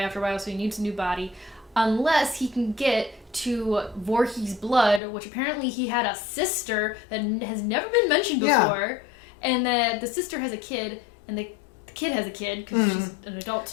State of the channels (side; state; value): right; drops out; at 5.0 s